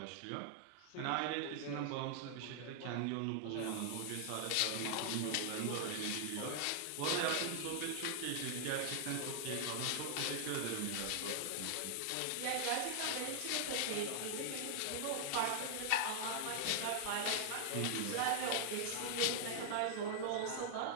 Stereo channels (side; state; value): both; different; correlation 0.00